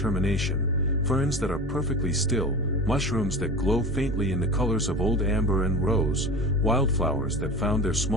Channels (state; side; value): normal; both; correlation 0.32